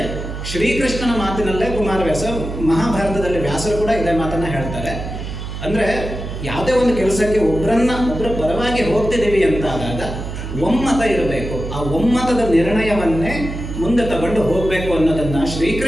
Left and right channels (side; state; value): right; noise; hum, 7 dB below the sound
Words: ಶ್ರೀಕೃಷ್ಣನ ಮಾತಿನಲ್ಲೇ ಕುಮಾರವ್ಯಾಸ, ಮಹಾಭಾರತದಲ್ಲಿ ವ್ಯಾಸರು ಕೂಡ ಇದೇ ಮಾತನ್ನು ಹೇಳ್ತಾರೆ. ಅಂದರೆ ಯಾವುದೇ ಒಂದು ಕೆಲಸಕ್ಕೆ ಒಬ್ಬರ ಪರವಾಗಿ ಹೋಗ್ತಿದ್ದೀವಿ ಅಂತಾದಾಗ ಒಮ್ಮತ ಇರಬೇಕು. ಆ ಒಮ್ಮತದ ನಿರ್ಣಯವನ್ನೇ ಮುಂದೆ ತಗೊಂಡು ಹೋಗಬೇಕು ಅನ್ನೋದನ್ನು